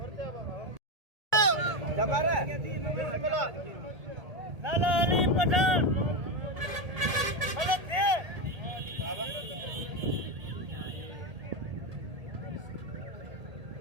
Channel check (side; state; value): left; late; 1.8 ms